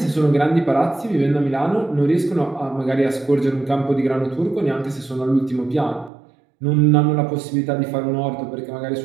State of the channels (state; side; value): drops out; left; at 6.1 s